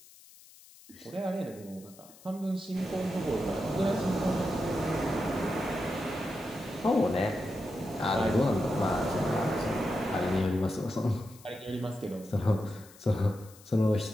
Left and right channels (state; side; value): noise; left; hiss, 23 dB below the sound